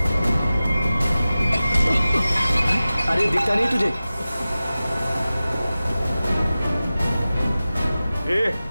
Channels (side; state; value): both; inverted; correlation -0.96